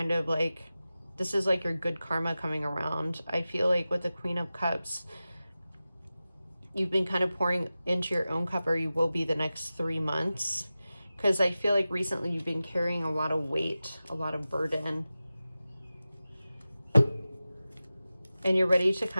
of like, this is like your good karma coming around. I feel like with the Queen of Cups, you've been kind of pouring into your own cup, or you will be the next 3 months. Because I feel like recently you've been carrying a lot of weight, a lot of burden. And you're ready to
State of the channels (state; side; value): inverted; both; correlation -0.95